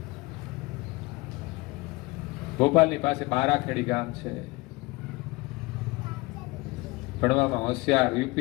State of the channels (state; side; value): quieter; right; 23.1 dB